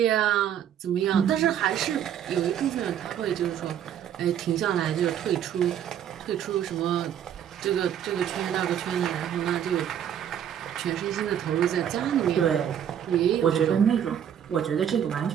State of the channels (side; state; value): left; quieter; 9.6 dB